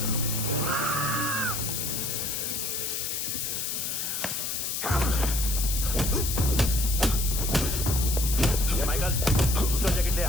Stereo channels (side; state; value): left; noise; hiss, 2 dB below the sound